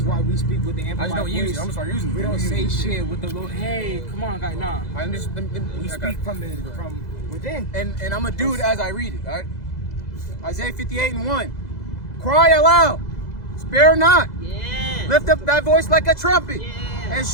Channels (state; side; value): late; right; 2.0 ms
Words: why we speak with the I amplified just don't voice. use it. I'm gonna start using it. We don't Use say it. shit with the little, hey, come on, guys, nah. I understand. We speak from within. And I'm gonna do it as I read it, all right? Isaiah 58:1. Cry aloud, spare not. Yeah. Lift up thy voice like a trumpet, Yeah. and